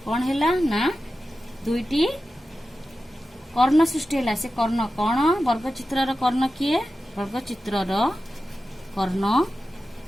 कौन है ना दुईटी कर्ण सृष्टि है। से कर्ण कौन वर्गचित्र कर्ण किए वर्गचित्र कर्ण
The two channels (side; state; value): both; normal; correlation 0.93